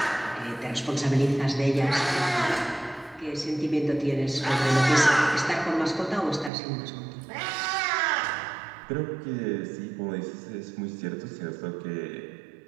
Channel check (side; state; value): left; drops out; at 6.5 s